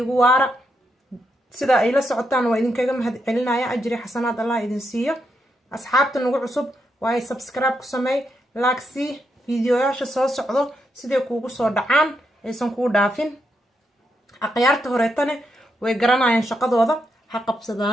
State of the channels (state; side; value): normal; both; correlation 0.81